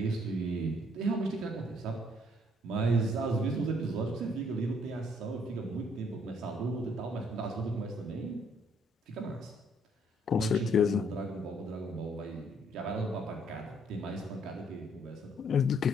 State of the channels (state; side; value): normal; both; correlation 0.66